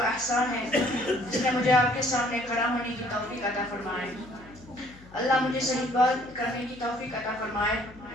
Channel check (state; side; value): noise; left; hum, 22 dB below the sound